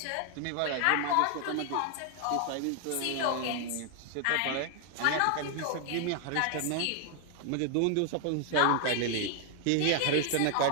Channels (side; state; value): both; different; correlation 0.00